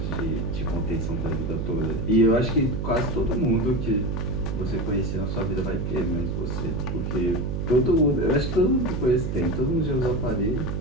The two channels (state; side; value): noise; right; hum, 2 dB below the sound